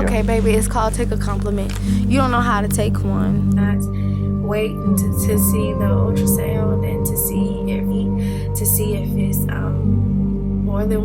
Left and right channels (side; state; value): both; identical; correlation 1.00